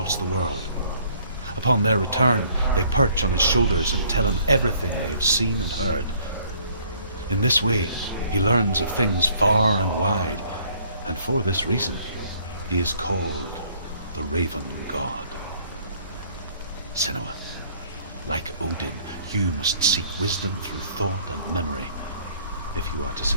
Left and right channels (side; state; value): both; inverted; correlation -0.60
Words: the world. Upon their return, they perch on his shoulders and tell him everything they have seen and heard. In this way, he learns of things far and wide, and for this reason, he is called the Raven God. Senua, like Odin, you must seek wisdom through thought and memory if you are to